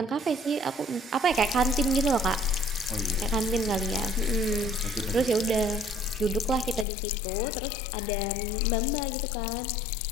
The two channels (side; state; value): right; drops out; at 6.9 s